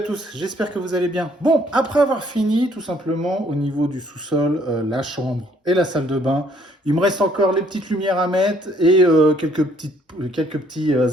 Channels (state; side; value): normal; both; correlation 0.64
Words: tous, j'espère que vous allez bien. Bon, après avoir fini tout simplement au niveau du sous-sol, la chambre et la salle de bain, il me reste encore les petites lumières à mettre et quelques petits